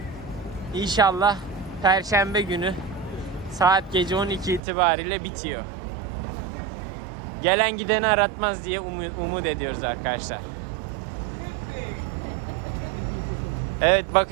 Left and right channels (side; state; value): left; drops out; at 4.6 s